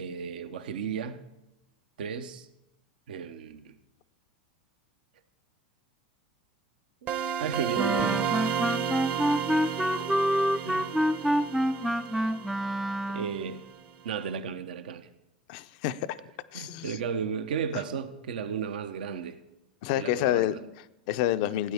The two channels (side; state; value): both; normal; correlation 0.43